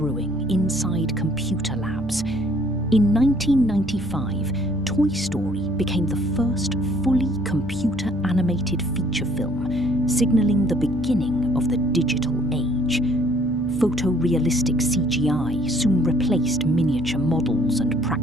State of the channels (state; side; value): noise; left; rumble, 16 dB below the sound